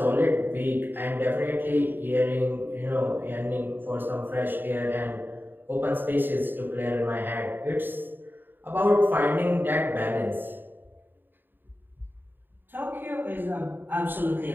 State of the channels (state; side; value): late; left; 0.094 ms